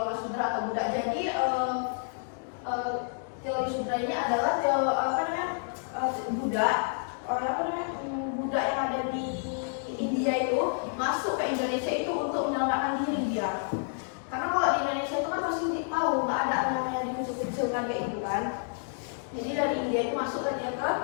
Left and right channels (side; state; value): right; silent; digital silence